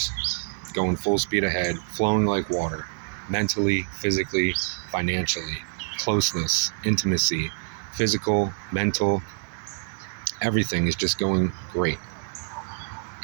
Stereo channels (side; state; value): left; silent; 61 dB below the other